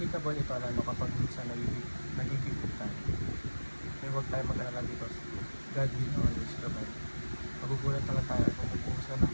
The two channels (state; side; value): inverted; both; correlation -1.00